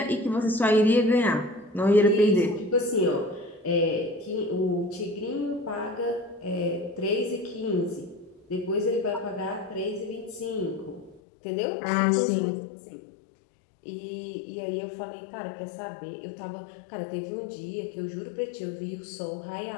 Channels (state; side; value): drops out; right; at 11.2 s